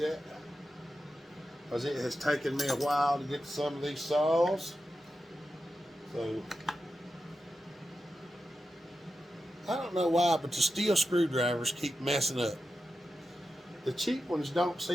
because it has taken me a while to get to some of these saws. So I don't know why, but the steel screwdrivers keep messing up. The cheap ones don't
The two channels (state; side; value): normal; both; correlation 0.90